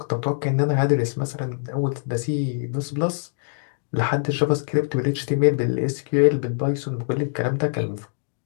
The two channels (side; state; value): right; silent; digital silence